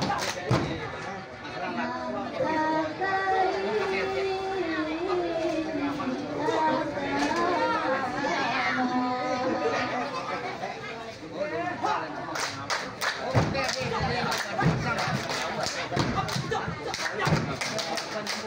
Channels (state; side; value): identical; both; correlation 1.00